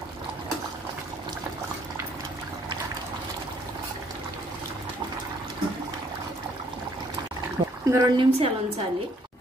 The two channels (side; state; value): both; normal; correlation 0.65